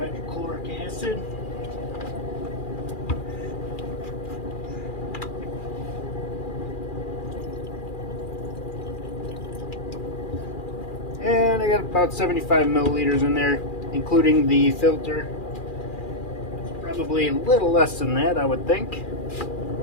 acid. And I got about 75 milliliters in there, including the filter. It's probably a little less than that, I would think.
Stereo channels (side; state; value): right; late; 2.4 ms